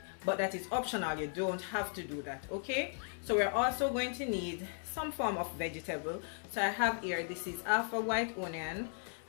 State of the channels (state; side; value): silent; right; 53 dB below the other